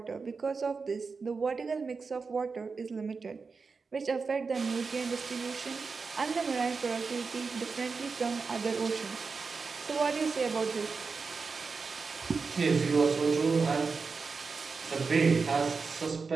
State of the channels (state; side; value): quieter; left; 4.7 dB